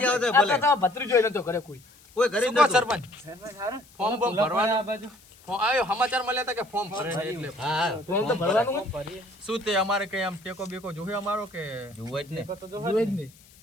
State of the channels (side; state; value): left; noise; hiss, 26 dB below the sound